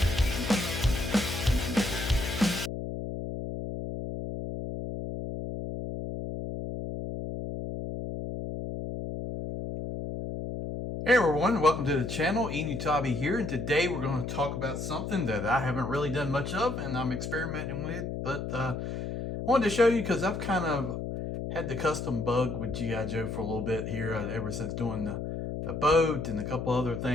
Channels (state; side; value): noise; left; hum, 5 dB below the sound